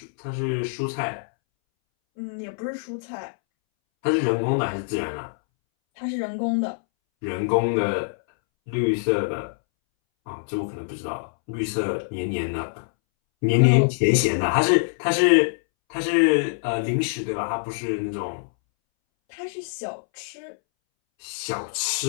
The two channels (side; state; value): right; silent; 62 dB below the other